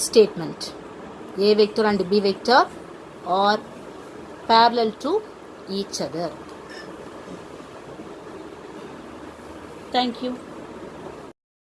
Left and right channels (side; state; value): both; identical; correlation 1.00